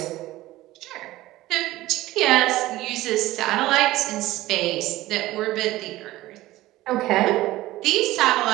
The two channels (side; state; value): left; quieter; 16.8 dB